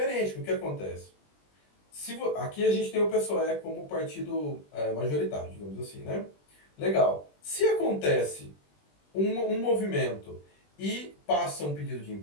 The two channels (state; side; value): late; right; 20 ms